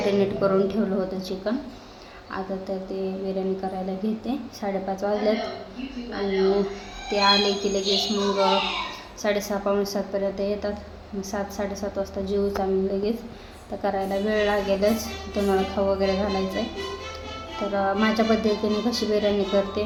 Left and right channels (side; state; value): both; identical; correlation 1.00